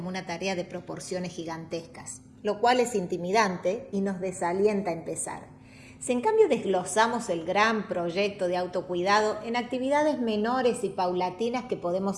una tarea de proporciones gigantescas, lo cual es intimidante y nos desalienta a empezar. Si en cambio desglosamos el gran proyecto de autocuidado en actividades menores y paulatinas que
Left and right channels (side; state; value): both; identical; correlation 1.00